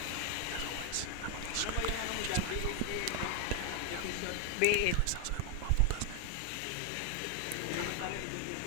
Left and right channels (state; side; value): different; both; correlation 0.01